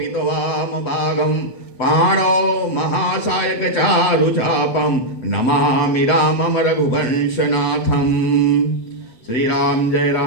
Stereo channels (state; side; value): late; right; 7.9 ms